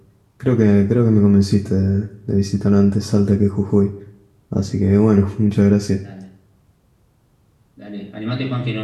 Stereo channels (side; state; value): both; identical; correlation 1.00